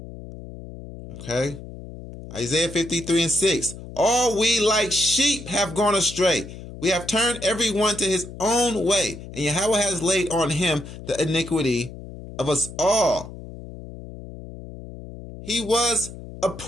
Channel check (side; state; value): left; noise; hum, 13 dB below the sound